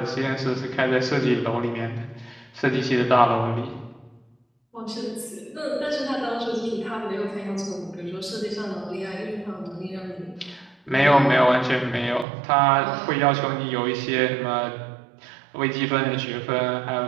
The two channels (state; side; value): drops out; left; at 12.2 s